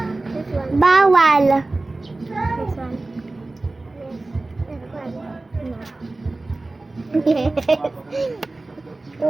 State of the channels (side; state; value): left; quieter; 3.1 dB